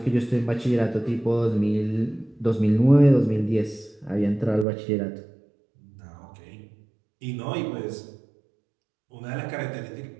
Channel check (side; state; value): left; drops out; at 4.7 s